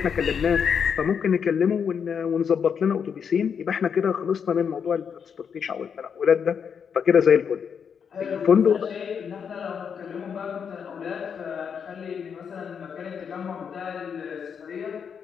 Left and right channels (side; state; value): right; quieter; 7.0 dB